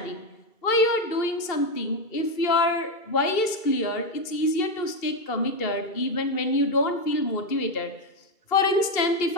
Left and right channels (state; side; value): late; right; 2.7 ms